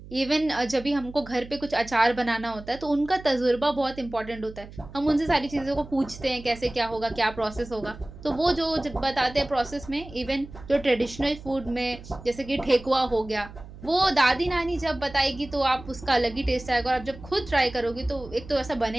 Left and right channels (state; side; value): noise; right; hum, 16 dB below the sound